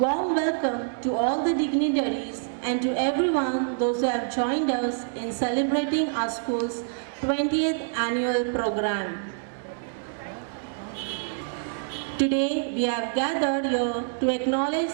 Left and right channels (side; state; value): left; silent; digital silence